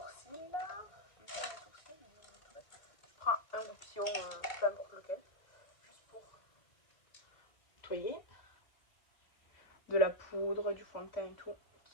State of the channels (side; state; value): right; late; 2.2 ms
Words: Je prends un goupillon, peu importe lequel, juste pour nettoyer. De la poudre, du fond de teint et tout,